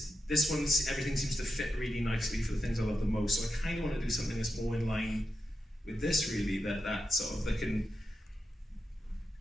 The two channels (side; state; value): both; normal; correlation 0.88